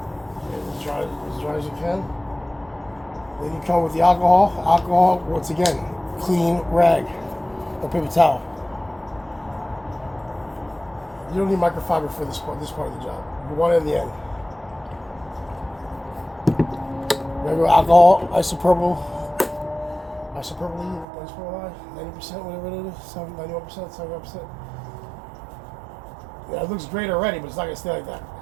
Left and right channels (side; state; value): left; drops out; at 21.1 s